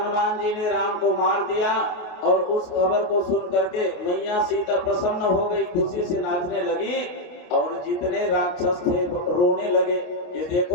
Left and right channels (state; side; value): late; right; 28 ms